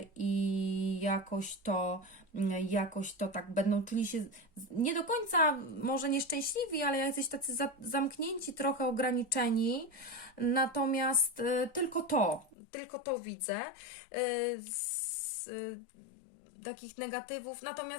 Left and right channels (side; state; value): right; drops out; at 12.6 s